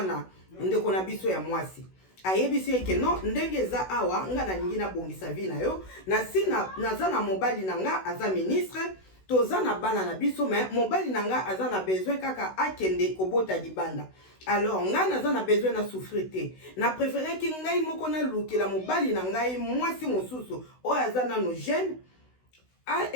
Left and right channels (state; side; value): late; right; 16 ms